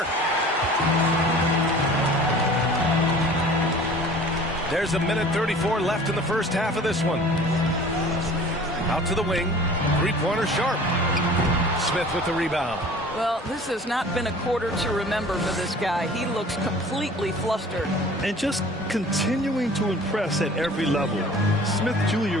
There's 1:34 left in the first half of this one. Out to the wing. Three-pointer Sharp. Smith with the rebound. Well, this has not been a quarter to remember for this guy. He looks completely flustered. And just continuing to impress at every level. Smith Jr.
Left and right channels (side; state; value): both; normal; correlation 0.45